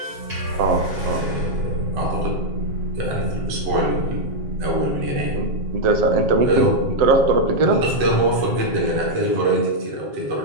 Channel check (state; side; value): late; left; 7.4 ms